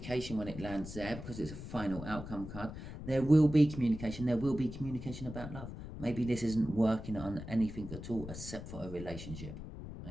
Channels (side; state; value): left; noise; rumble, 10 dB below the sound